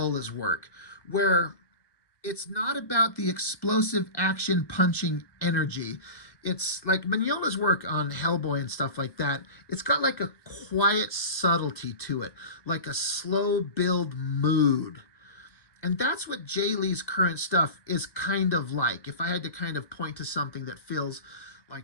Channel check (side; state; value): right; late; 1.2 ms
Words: work, where it's not about the explosive action punching energy. It's like Mignola's work on Hellboy and stuff like that. It's got like a quiet subtlety to it, like a slow build mood. And that's what Jay Lee's current stuff is kind of like. If I had to kind of point to something that feels